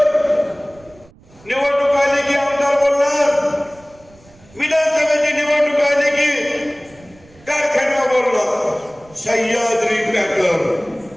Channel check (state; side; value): noise; right; rumble, 27 dB below the sound